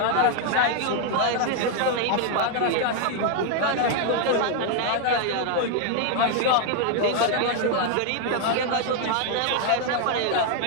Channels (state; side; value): different; both; correlation 0.00